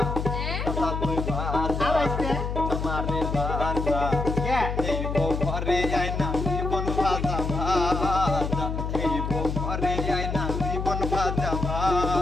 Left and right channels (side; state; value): left; noise; hum, 3 dB below the sound